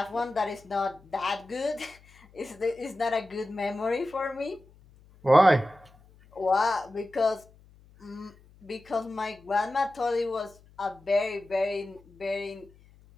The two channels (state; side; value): noise; left; hum, 26 dB below the sound